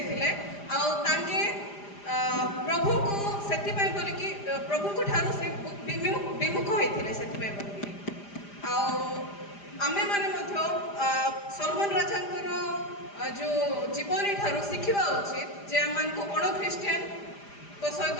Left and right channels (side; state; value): right; late; 5.0 ms